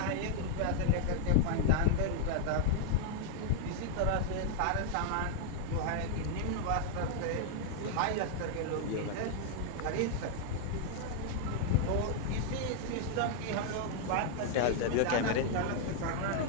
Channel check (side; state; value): both; different; correlation 0.00